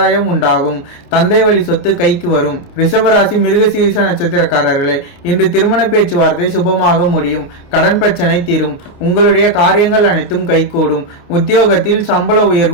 உண்டாகும். தந்தை வழி சொத்து கைக்கு வரும். ரிஷபராசி மிருகசீரிஷ நட்சத்திரக்காரர்களே, இன்று திருமண பேச்சுவார்த்தை சுபமாக முடியும். கடன் பிரச்சனை தீரும். உங்களுடைய காரியங்கள் அனைத்தும் கைகூடும். உத்தியோகத்தில் சம்பள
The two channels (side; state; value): right; late; 29 ms